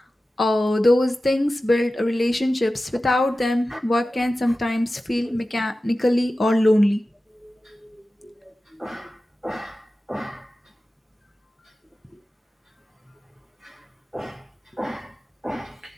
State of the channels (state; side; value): normal; both; correlation 0.95